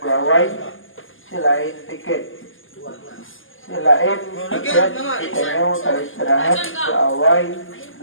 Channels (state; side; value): late; right; 0.58 ms